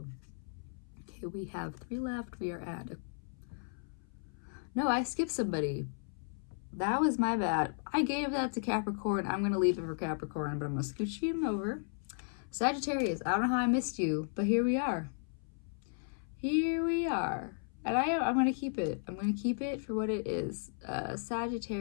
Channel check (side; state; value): right; silent; 55 dB below the other